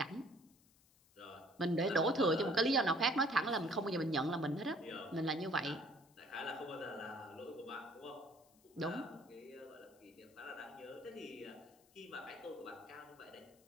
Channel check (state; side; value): noise; left; hiss, 30 dB below the sound